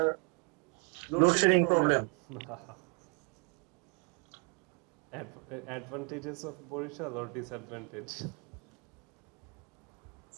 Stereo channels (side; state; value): left; quieter; 30.3 dB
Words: load shedding problem. Advantages of Borishal or disadvantage?